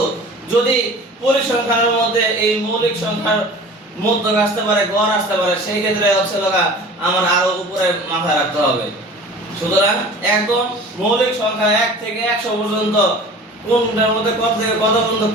যদি পরিসংখ্যানের মধ্যে এই মৌলিক সংখ্যার মধ্যক আসতে পারে, গড় আসতে পারে, সেই ক্ষেত্রে হচ্ছে লগা আমার আরো উপরে মাথায় রাখতে হবে। সুতরাং একদম মৌলিক সংখ্যা 1 থেকে 100 পর্যন্ত কোনটার মধ্যে কত থেকে কত পর্যন্ত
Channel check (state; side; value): normal; both; correlation 0.41